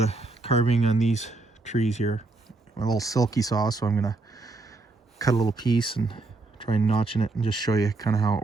of carving on these trees here. My little silky saw, so I'm gonna cut a little piece and try notching it and just show you kind of how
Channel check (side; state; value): left; quieter; 3.3 dB